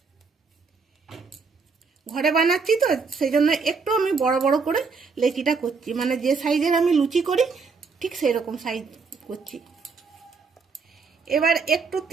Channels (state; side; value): quieter; left; 4.9 dB